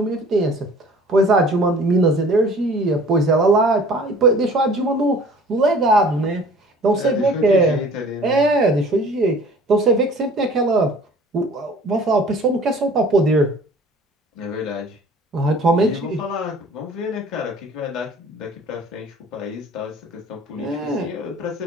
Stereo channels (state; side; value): normal; both; correlation 0.49